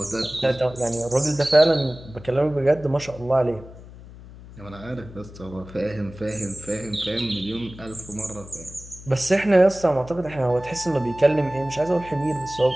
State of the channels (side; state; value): left; noise; hum, 17 dB below the sound